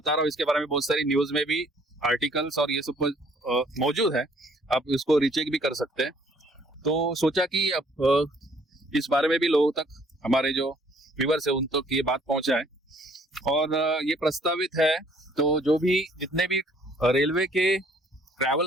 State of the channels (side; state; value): both; normal; correlation 0.61